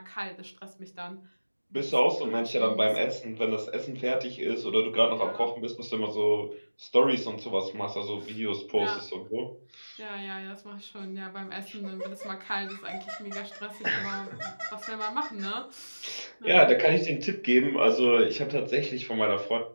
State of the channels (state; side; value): inverted; both; correlation -1.00